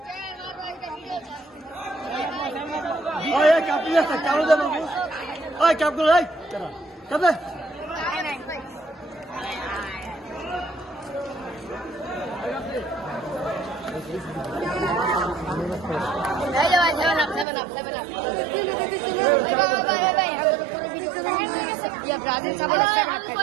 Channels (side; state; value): left; drops out; at 17.4 s